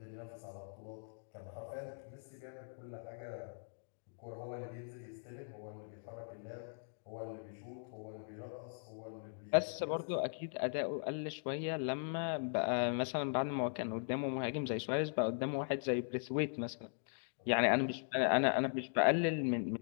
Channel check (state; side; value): silent; right; digital silence